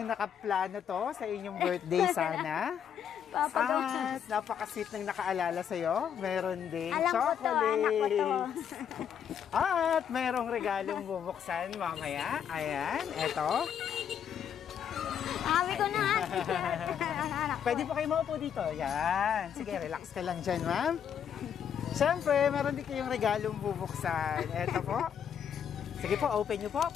nakaplano to sa inyong birthday sana. At napaka-sweet nang nakaalala sa'yo. Meron ding Alam ko to, anak ko to. chocolates. At merong regalong bubuksan mamaya. Ayan, eto. Sabi ko na nga. Pwede po kayo maupo dito. Yan. Sige, relax ka lang dyan, ma'am. Siyempre, meron din kayong regalong bubuksan. Eto po. Sige po, open nyo po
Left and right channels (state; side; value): quieter; right; 8.4 dB